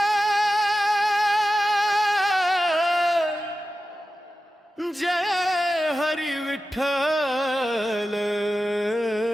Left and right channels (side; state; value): both; normal; correlation 0.93